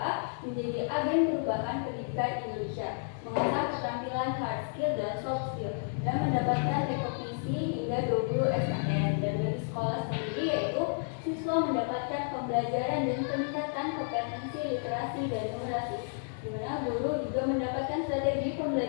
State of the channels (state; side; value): silent; right; 57 dB below the other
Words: menjadi agen perubahan pendidikan Indonesia, mengasah keterampilan hard skill dan soft skill, dan mendapatkan rekognisi hingga 20 SKS. Dan bagi sekolah sendiri yaitu siswa mendapatkan pembelajaran dan peningkatan kompetensi literasi dan numerasi, di mana guru juga mendapatkan strategi